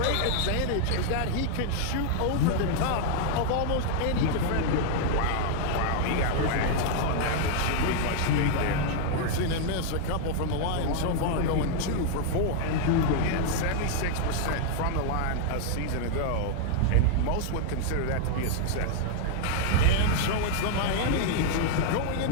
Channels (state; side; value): different; both; correlation 0.00